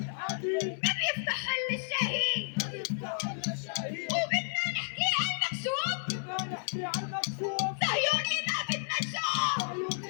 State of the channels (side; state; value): right; silent; 57 dB below the other